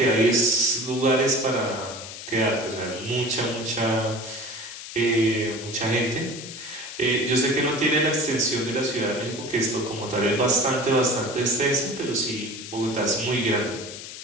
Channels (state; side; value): noise; left; hiss, 11 dB below the sound